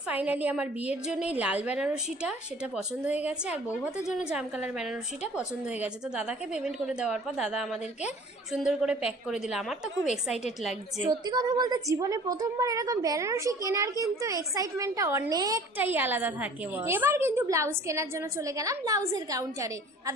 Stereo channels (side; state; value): both; normal; correlation 0.48